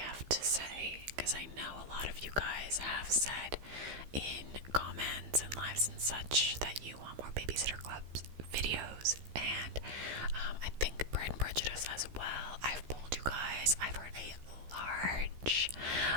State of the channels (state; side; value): late; left; 15 ms